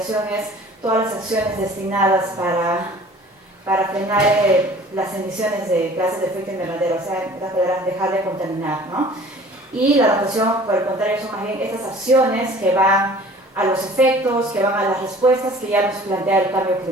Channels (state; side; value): normal; both; correlation 0.48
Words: es todas las acciones destinadas para frenar las emisiones de gases de efecto invernadero, o sea, dejar de contaminar, ¿no? Y la adaptación, por el contrario, son más bien estas acciones que van a los efectos, que van a las respuestas que ya nos plantea el cambio